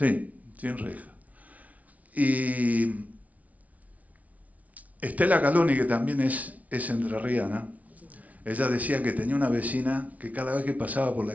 sin reja. Y Estela Caloni, que también es entrerriana, ella decía que tenía una vecina que cada vez que pasaba por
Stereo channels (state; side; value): late; left; 0.070 ms